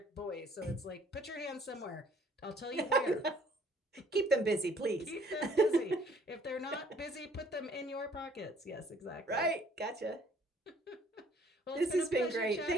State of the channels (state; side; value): normal; both; correlation 0.60